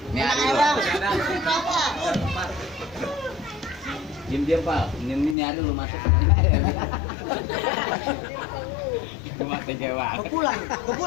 Ini ada Ayo, bang. Bang. Diam Pak. Ini ada lu masuk. Cuma tega banget. Gua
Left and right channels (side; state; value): right; drops out; at 5.4 s